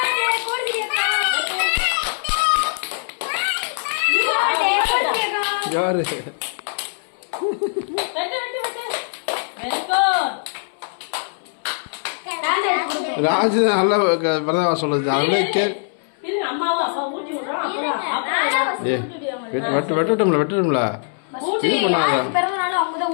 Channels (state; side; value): silent; right; 65 dB below the other